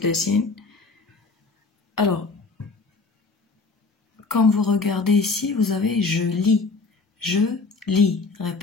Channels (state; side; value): quieter; right; 4.0 dB